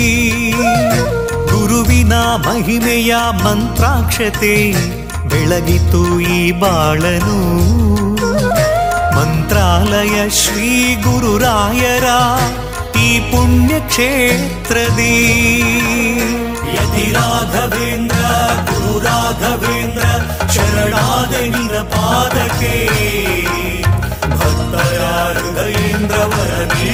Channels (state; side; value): identical; both; correlation 1.00